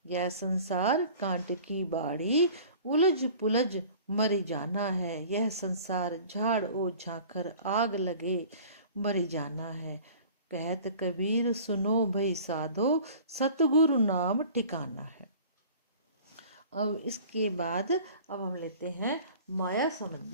यह संसार कांट की बाड़ी, उलझ पुलझ मर जाना है, यह संसार झाड़ ओ झांखर, आग लगे मर जाना है। कहत कबीर सुनो भई साधो, सतगुरु नाम ठिकाना है। अब इसके बाद अब हम लेते हैं माया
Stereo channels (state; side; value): inverted; both; correlation -0.45